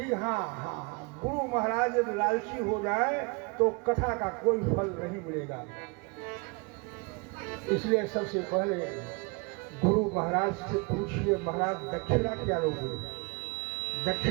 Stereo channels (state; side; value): quieter; left; 29.8 dB